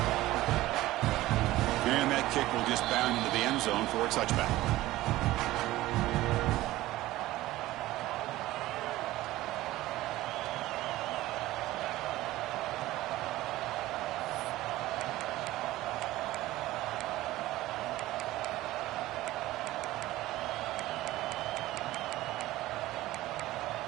And that kick will just bound into the end zone for a touchback.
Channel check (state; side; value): quieter; left; 16.7 dB